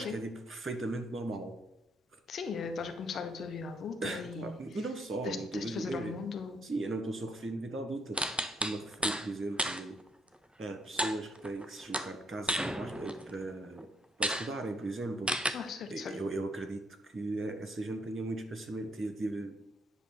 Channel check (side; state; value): both; normal; correlation 0.70